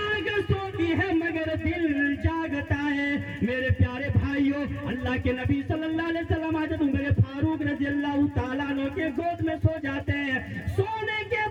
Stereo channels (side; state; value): both; identical; correlation 1.00